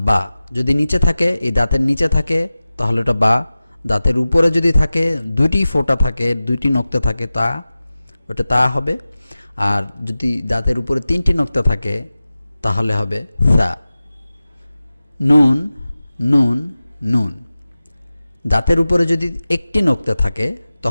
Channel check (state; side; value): inverted; both; correlation -0.96